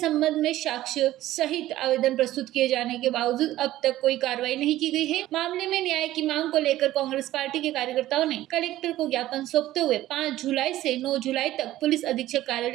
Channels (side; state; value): left; quieter; 14.9 dB